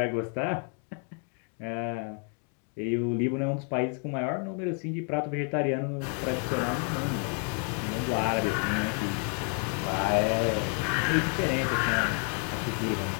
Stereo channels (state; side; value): quieter; right; 39.3 dB